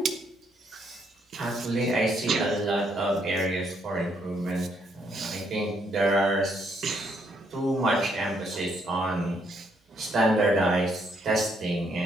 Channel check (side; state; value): both; normal; correlation 0.72